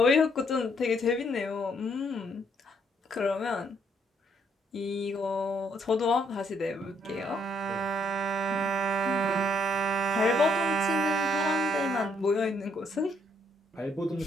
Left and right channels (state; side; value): normal; both; correlation 0.70